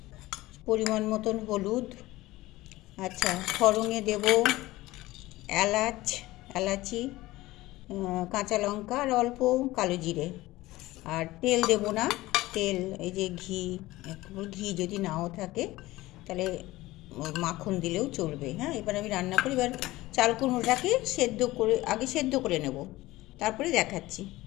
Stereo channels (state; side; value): quieter; right; 18.3 dB